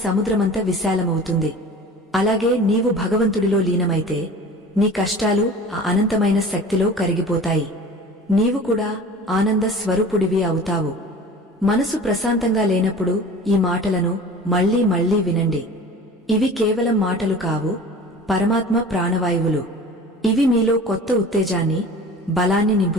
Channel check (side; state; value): both; normal; correlation 0.40